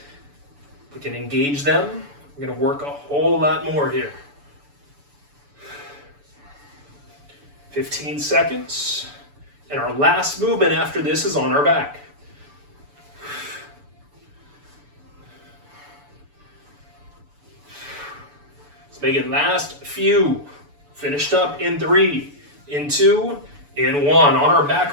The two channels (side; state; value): left; late; 6.9 ms